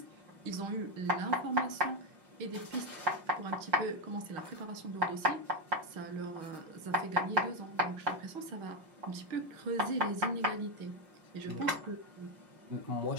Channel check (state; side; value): late; left; 5.6 ms